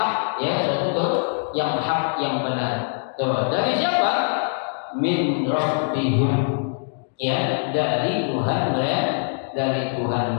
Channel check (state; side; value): silent; right; digital silence